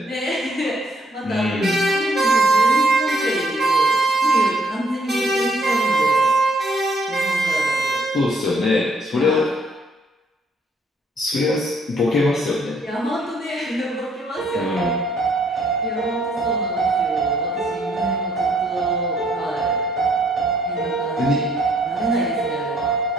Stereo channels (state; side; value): normal; both; correlation 0.67